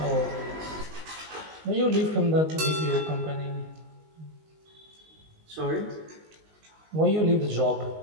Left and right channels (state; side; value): late; left; 19 ms